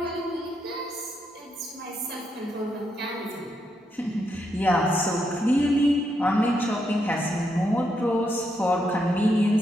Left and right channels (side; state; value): both; normal; correlation 0.80